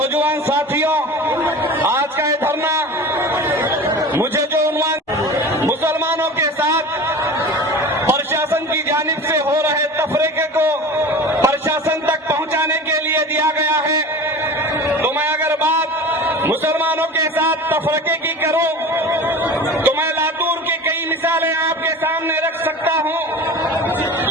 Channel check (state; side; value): normal; both; correlation 0.35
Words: साथियों, आज का ये धरना मुझे जो उन्वान मुसलमानों के साथ प्रशासन की जानिब से हो रहे तफरीके को प्रशासन तक पहुंचाने के लिए दिया गया है, तो मैं अगर बात मुसलमानों के साथ तफरीके की करूं तो मैं लातूर की कई मिसालें आपके सामने रख सकता हूं।